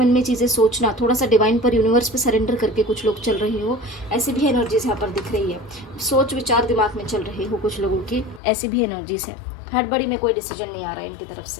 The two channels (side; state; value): right; drops out; at 8.4 s